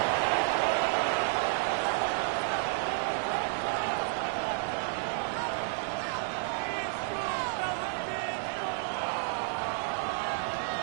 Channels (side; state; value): left; silent; 56 dB below the other